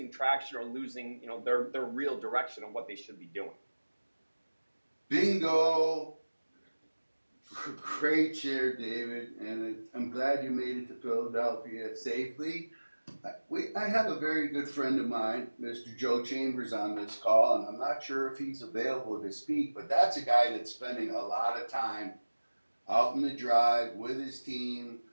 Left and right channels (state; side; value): inverted; both; correlation -1.00